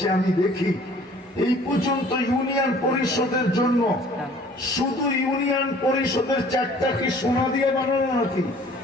আমি দেখি এই পর্যন্ত ইউনিয়ন পরিষদের জন্য, শুধু ইউনিয়ন পরিষদের 4টা কি সোনা দিয়ে বানানো নাকি?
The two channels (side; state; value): both; normal; correlation 0.53